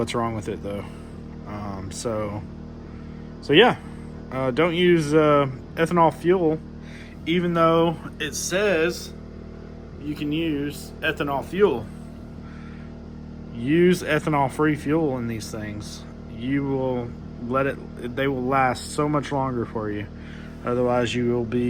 wrong with it though. So yeah, don't use ethanol fuel, even though it says you can use ethanol fuel. Use ethanol-free fuel in these things. You will they will last so much longer for you. Otherwise, you will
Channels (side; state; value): both; identical; correlation 1.00